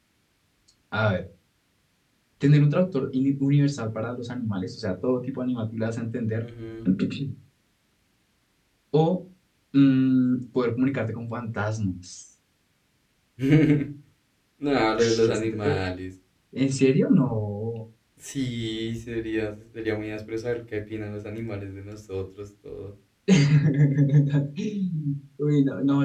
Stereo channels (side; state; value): both; identical; correlation 1.00